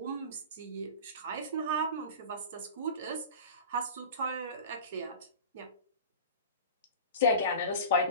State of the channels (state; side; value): inverted; both; correlation -0.34